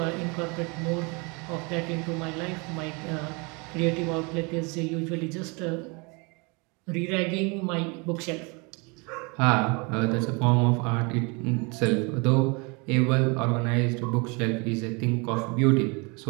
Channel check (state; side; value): quieter; left; 29.9 dB